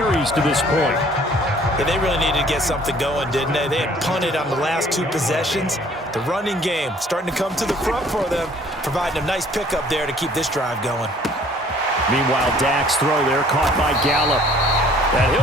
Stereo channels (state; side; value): normal; both; correlation 0.56